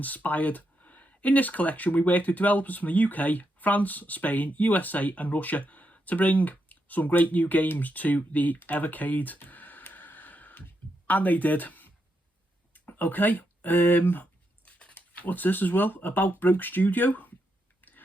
In this collection, we worked with developers from the UK, France, Spain, USA and Russia to bring some great new games to the Evercade. And they did. Okay, what's this as well? About Broke Studio.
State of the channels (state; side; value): normal; both; correlation 0.82